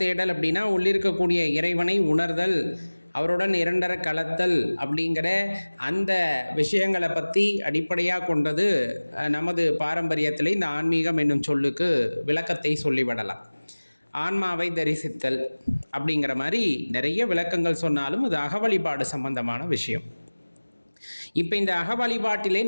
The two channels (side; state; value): both; inverted; correlation -1.00